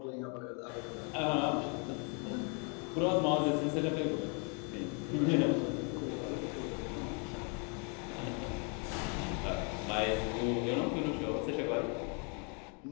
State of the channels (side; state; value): right; quieter; 37.1 dB